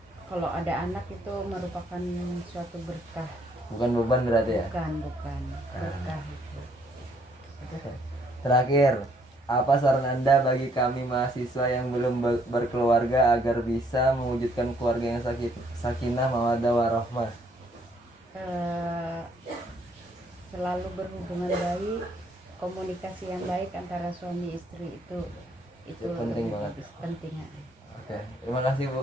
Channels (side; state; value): both; normal; correlation 0.67